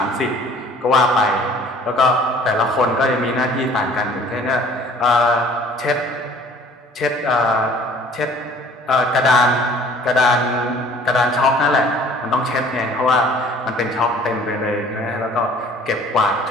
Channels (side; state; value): both; normal; correlation 0.52